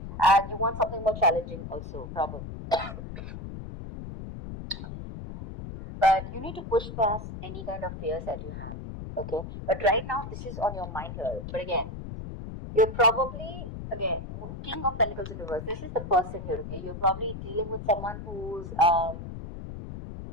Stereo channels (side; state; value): left; noise; rumble, 9 dB below the sound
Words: And you want something more challenging also, probably. But you need to push past any kind of fears that you have, okay? But right now, this is on your mind here. But again, you're probably, again, King of Pentacles in reverse. This is the person here, okay? You're probably dealing with someone who's